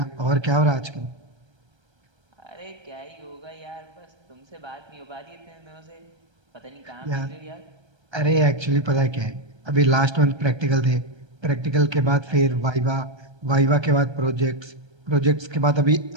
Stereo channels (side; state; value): left; late; 1.3 ms